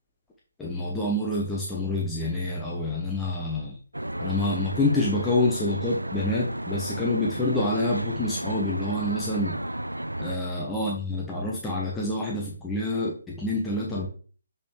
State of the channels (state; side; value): inverted; both; correlation -0.31